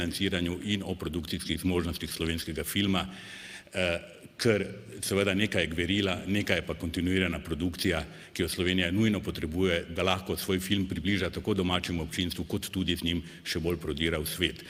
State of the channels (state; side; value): identical; both; correlation 1.00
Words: in o produkcijskih zmožnostih slovenskega filma, ker seveda nekaj je gverila, nekaj je pa kontinuirana produkcija, ki jo Slovenija nujno potrebuje, da lahko svoj film približa tako domačemu občinstvu, kot tudi z njim še bolj prodira v svet.